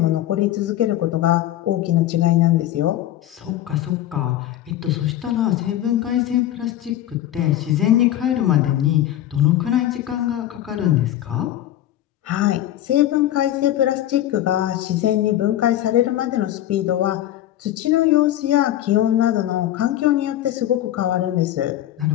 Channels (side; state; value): right; quieter; 12.9 dB